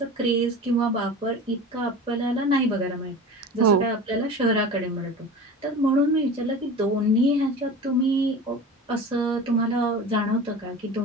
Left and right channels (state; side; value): normal; both; correlation 0.33